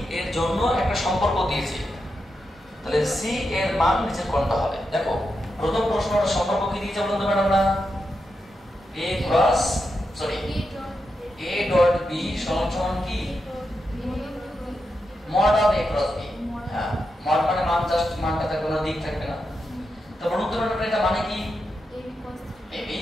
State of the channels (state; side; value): normal; both; correlation 0.87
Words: এর জন্য একটা সম্পর্ক দিয়েছে তাহলে c এর মান নিচে কোনটা হবে দেখো প্রথম প্রশ্নটা সম্পর্ক কি দিয়েছে বলুন তো ম্যাডামরা a cross sorry a dot b সমান কি mod of a cross b হ্যাঁ মড মানে মান জাস্ট মানটা তার কোনো দিক থাকবে না তো বলুন তো ম্যাডাম এটা মানে কি ab